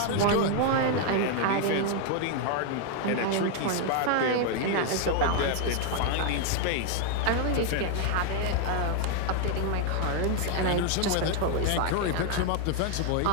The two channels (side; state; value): both; different; correlation 0.00